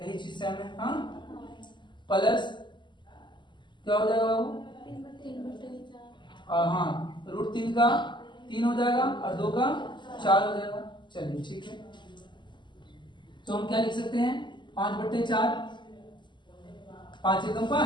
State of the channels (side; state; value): right; late; 0.22 ms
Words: यही चीज सेम है, हाँ, प्लस क्या हो जाएगा बाबू, हाँ, √3 का 3 हो जाएगा और 2 का 4 हो जाएगा। चलिए ठीक है, तो हम क्या लिख सकते हैं, 5/4, 5 एकम